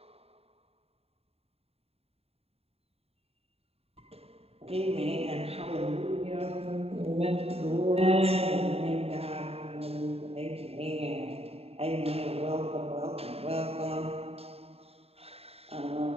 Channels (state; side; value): late; left; 0.29 ms